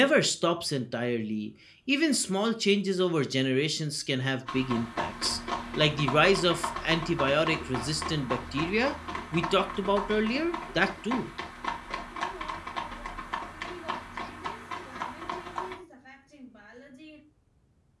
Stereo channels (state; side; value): identical; both; correlation 1.00